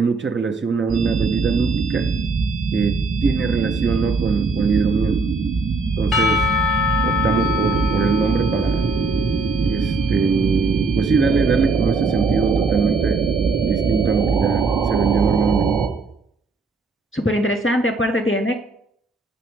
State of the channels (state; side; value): quieter; left; 3.7 dB